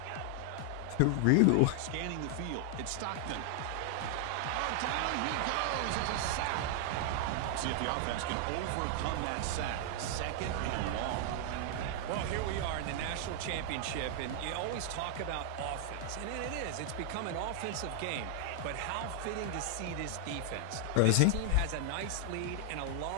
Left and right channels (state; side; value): different; both; correlation 0.00